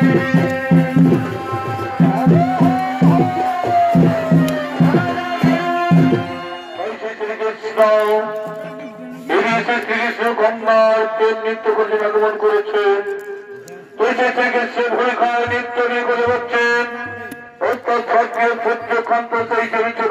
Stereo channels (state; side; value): identical; both; correlation 1.00